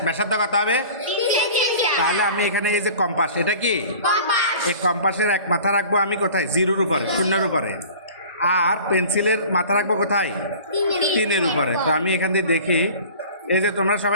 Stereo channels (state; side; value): inverted; both; correlation -0.43